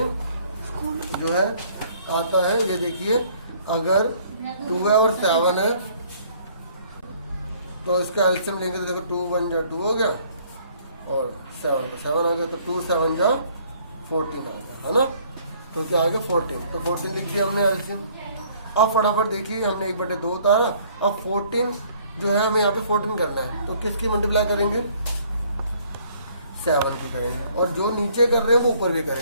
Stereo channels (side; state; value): both; inverted; correlation -0.60